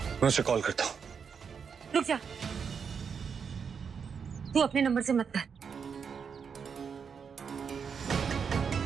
मैं उसे कॉल करता हूँ। रुक जा, तू अपने नंबर से मत कर।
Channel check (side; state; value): left; quieter; 6.4 dB